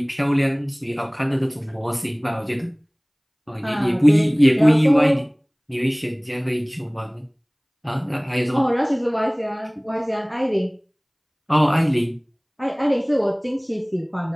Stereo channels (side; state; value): both; identical; correlation 1.00